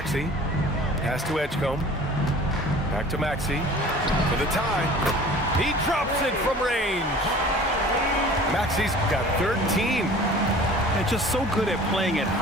Pass to Edgecombe. Back to Maxey. For the tie. He drops it from range. Maxey's got 13. And just so good at playing at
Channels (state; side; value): normal; both; correlation 0.45